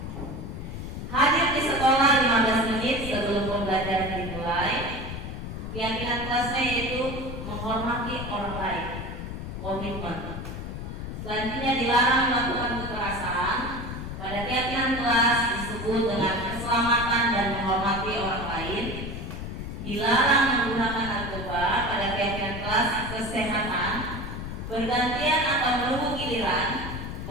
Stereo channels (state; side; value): noise; left; rumble, 7 dB below the sound